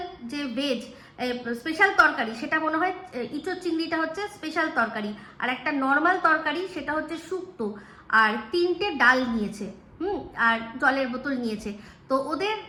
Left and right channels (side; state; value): both; identical; correlation 1.00